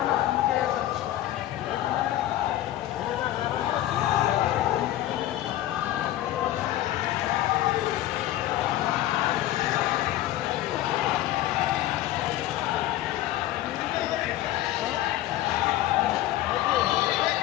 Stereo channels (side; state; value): right; quieter; 14.2 dB